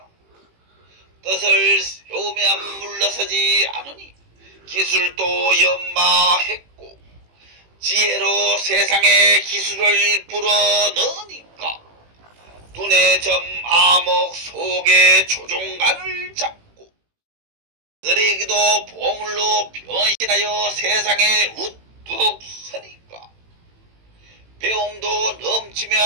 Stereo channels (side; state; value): left; late; 18 ms